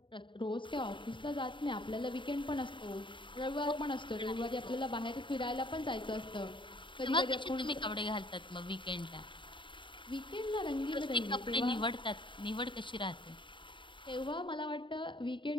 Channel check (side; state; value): right; late; 0.24 ms